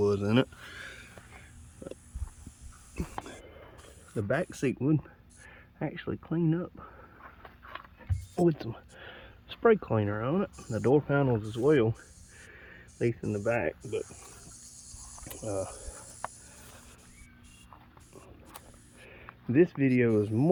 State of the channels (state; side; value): identical; both; correlation 1.00